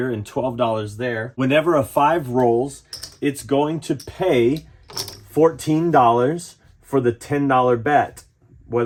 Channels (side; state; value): both; identical; correlation 1.00